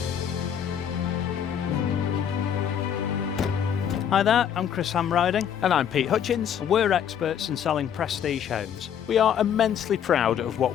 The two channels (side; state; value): right; quieter; 8.8 dB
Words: Hi there, I'm Chris Hamriding. And I'm Pete Hutchins. We're experts in selling prestige homes. We are immensely proud of what